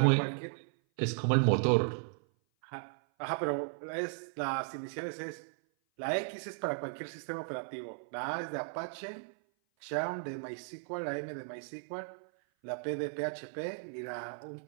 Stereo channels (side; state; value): left; silent; 54 dB below the other